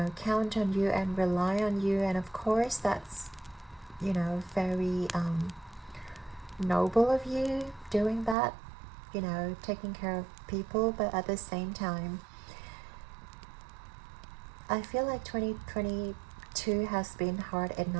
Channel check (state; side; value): drops out; left; at 8.3 s